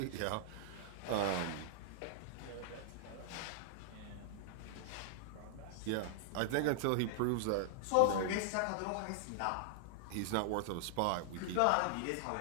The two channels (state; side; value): different; both; correlation -0.01